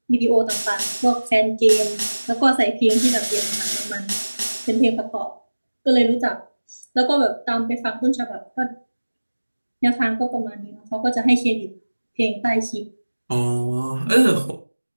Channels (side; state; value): both; inverted; correlation -1.00